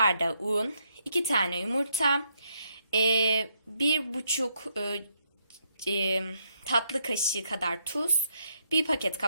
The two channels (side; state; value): both; inverted; correlation -0.76